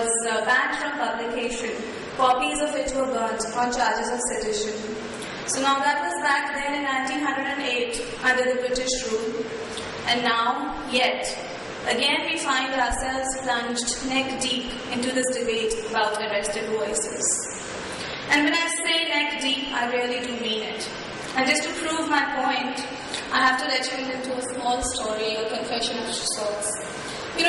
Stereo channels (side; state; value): both; identical; correlation 1.00